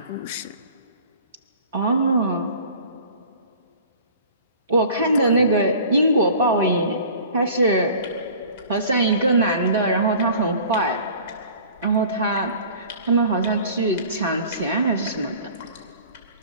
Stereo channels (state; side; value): inverted; both; correlation -0.45